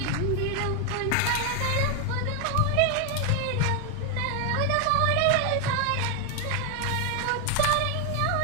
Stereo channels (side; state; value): both; different; correlation 0.01